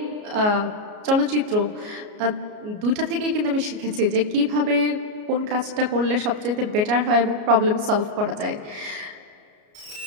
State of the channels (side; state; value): left; late; 33 ms